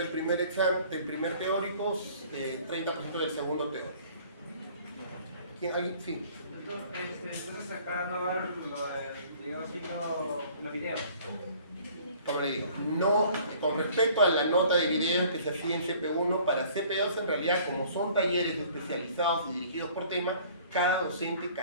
primer examen, del primer teórico, 30% del segundo teórico. ¿Quién? ¿Alguien? Sí. Entonces acá no va a haber los videos. Como le digo, no, con respecto a la nota de videos que se hacía en CP1, para CP2 en realidad, como son talleres especializados y dirigidos por tema, cada docente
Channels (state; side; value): inverted; both; correlation -0.53